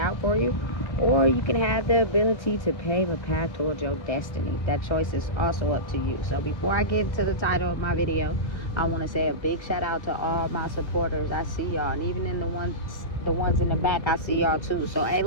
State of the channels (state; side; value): late; right; 1.5 ms